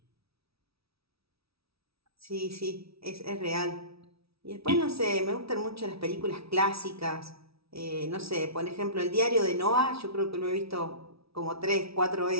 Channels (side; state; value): left; late; 0.76 ms